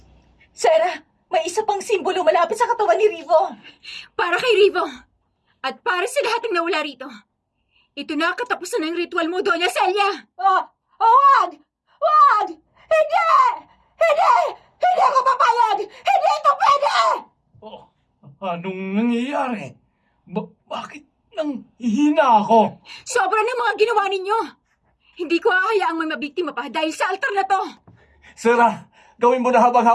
Sarah, may isa pang simbolo malapit sa katawan ni Rivo. Para kay Rivo. At para sa lahat ng nawala rito. Ito na ang katapusan ng ritual mo, Doña Celia. Wag! Wag! Hindi! Hindi! Hindi ako papayag! Hindi ito pwede! Oh, anong nangyayari? Bakit nang hihina ako? Sobra ng mga ginawa ninyo. Hindi ko hahayaang may mabiktima pa dahil sa altar na to. Sarah, gawin mo na habang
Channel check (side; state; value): both; identical; correlation 1.00